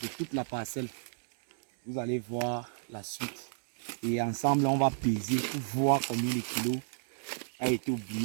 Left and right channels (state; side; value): silent; left; digital silence